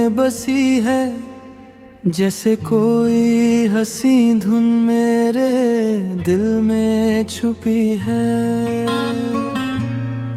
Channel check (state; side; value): identical; both; correlation 1.00